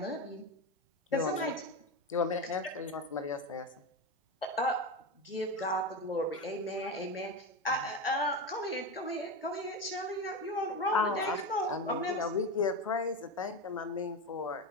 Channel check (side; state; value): both; normal; correlation 0.18